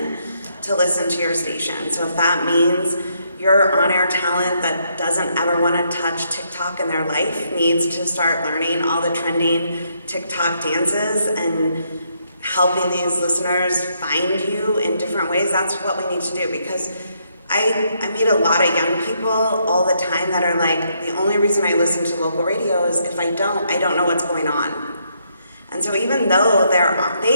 to listen to your station. So if that means your on-air talent that doesn't ever want to touch TikTok in their life needs to start learning all the trending TikTok dances and helping these listeners find you in different ways, that's what we need to do. Because I meet a lot of young people all the time that are like, the only reason I listen to local radio is if I don't know what's going on. And so even though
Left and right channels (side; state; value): both; inverted; correlation -0.75